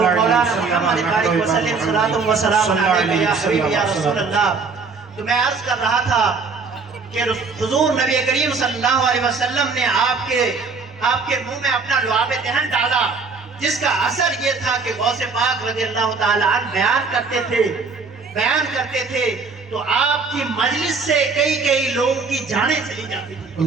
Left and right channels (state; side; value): quieter; left; 4.7 dB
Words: محمد بارک وسلم صلاۃ و سلام علیک یا حبیبی یا رسول اللہ. تو میں عرض کر رہا تھا کہ حضور نبی کریم صلی اللہ علیہ وسلم نے آپ کے منہ میں اپنا لعاب دہن ڈالا، جس کا اثر یہ تھا کہ غوث پاک رضی اللہ تعالیٰ عنہ بیان کرتے تھے تو آپ کی مجلس سے کئی لوگوں کی جانیں چلی جاتی تھی.